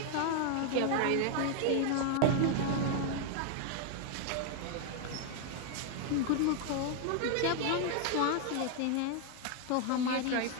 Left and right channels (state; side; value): different; both; correlation 0.00